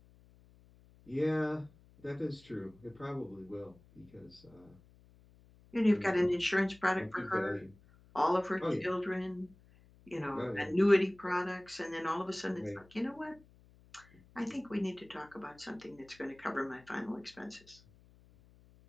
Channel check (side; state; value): left; noise; hum, 26 dB below the sound